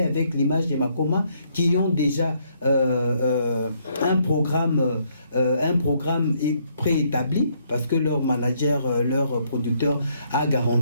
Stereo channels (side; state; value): both; inverted; correlation -0.71